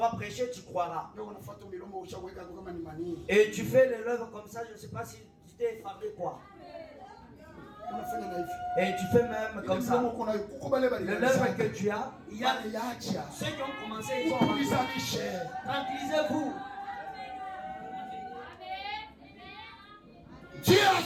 prêcher, tu croiras. Et tu fais les lèvres comme ça, je ne sais pas si tu t'es effaré quoi. Et tu fais même comme ça. Le lèvre que tu as, il y a ceux qui ont commencé, ils sont tranquillisez-vous. Dieu a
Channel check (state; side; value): identical; both; correlation 1.00